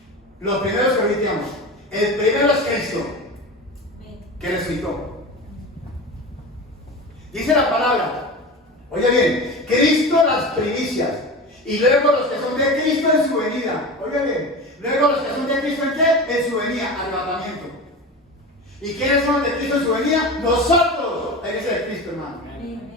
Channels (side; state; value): both; normal; correlation 0.29